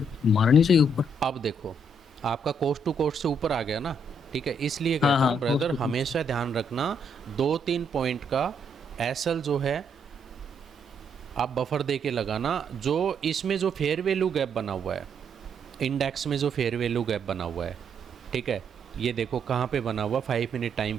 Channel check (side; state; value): both; normal; correlation 0.73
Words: मारनी चाहिए ऊपर। अब देखो आपका कोस्ट टू कोस्ट से ऊपर आ गया ना। ठीक है, इसलिए हाँ, कहता हाँ, हूँ ब्रदर, cost to हमेशा ध्यान रखना 2-3 पॉइंट का एसएल जो है आप बफर दे के लगाना। जो इसमें जो फेयर वैल्यू गैप बना हुआ है, इंडेक्स में जो फेयर वैल्यू गैप बना हुआ है, ठीक है, ये देखो कहाँ पे बना हुआ, 5 मिनट टाइम